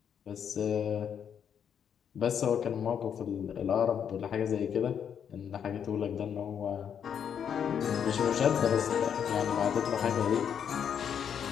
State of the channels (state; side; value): quieter; right; 8.2 dB